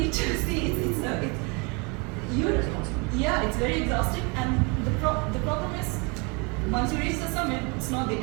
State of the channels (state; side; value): quieter; left; 31.0 dB